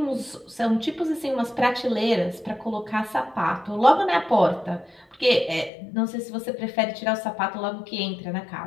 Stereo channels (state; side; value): drops out; right; at 5.7 s